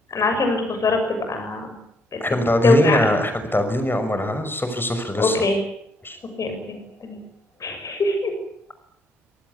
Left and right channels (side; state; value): both; normal; correlation 0.72